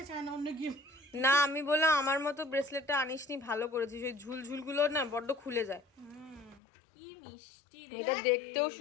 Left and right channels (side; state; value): right; drops out; at 6.6 s